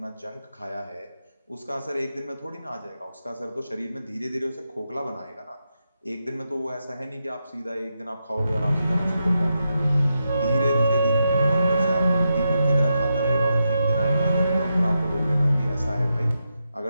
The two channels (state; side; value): inverted; both; correlation -0.86